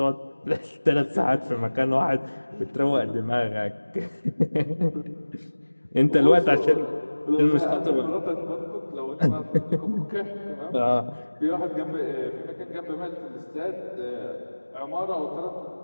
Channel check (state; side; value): inverted; both; correlation -1.00